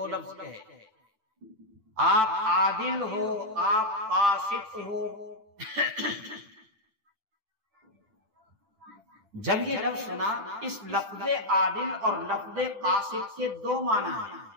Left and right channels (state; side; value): late; left; 9.1 ms